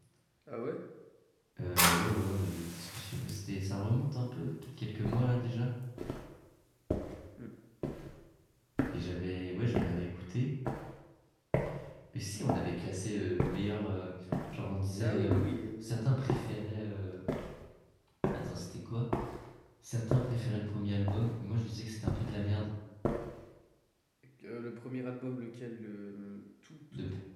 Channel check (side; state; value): both; identical; correlation 1.00